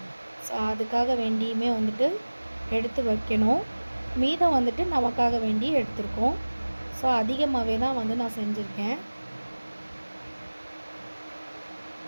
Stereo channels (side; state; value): both; inverted; correlation -1.00